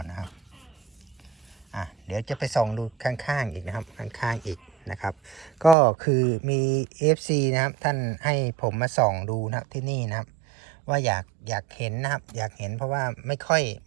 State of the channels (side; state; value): left; drops out; at 5.8 s